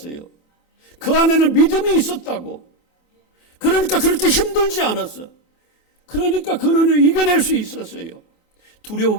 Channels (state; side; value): late; right; 28 ms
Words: 그 안에는 믿음이 있었다고. 그러니까 그렇게 힘들지 않았어. 그러니까 그는 이겨낼 수 있었어요.